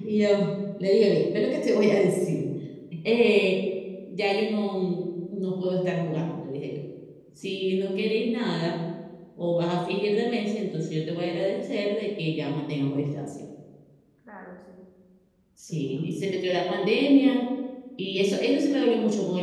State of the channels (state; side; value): identical; both; correlation 1.00